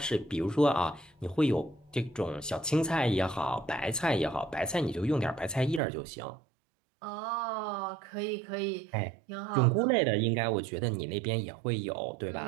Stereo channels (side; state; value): left; drops out; at 5.8 s